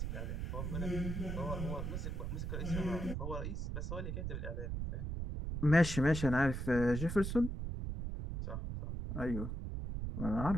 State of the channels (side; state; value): right; noise; rumble, 3 dB below the sound